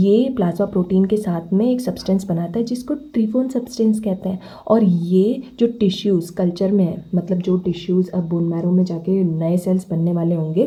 प्लाज्मा प्रोटीन के साथ में एक सब्सटेंस बनाता है जिसको ट्रीफोन सब्सटेंस कहते हैं। और ये जो टिश्यूज़ कल्चर में है, मतलब जो टिश्यूज़ अब बोन मैरो में जाके नए सेल्स बनने वाले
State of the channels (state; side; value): identical; both; correlation 1.00